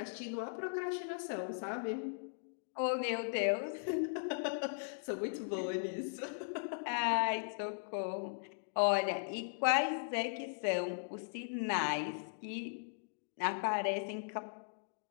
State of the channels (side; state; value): right; silent; digital silence